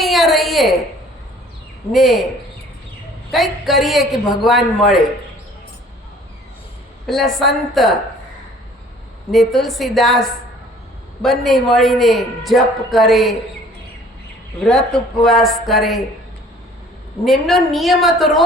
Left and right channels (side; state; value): both; normal; correlation 0.53